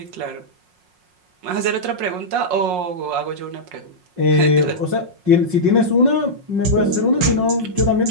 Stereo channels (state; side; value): late; left; 5.5 ms